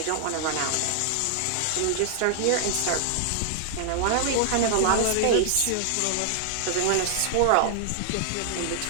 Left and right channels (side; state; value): both; different; correlation 0.00